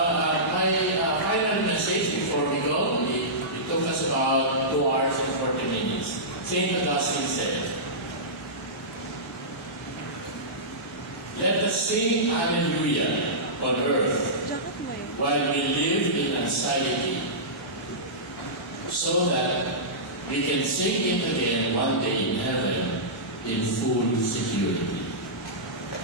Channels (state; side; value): normal; both; correlation -0.17